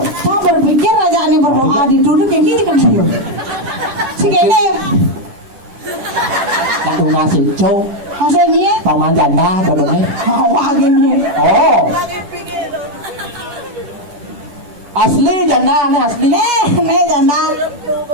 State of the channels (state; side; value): late; left; 10 ms